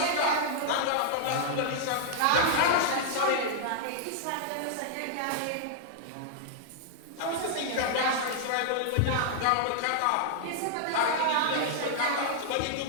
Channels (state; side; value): different; both; correlation -0.01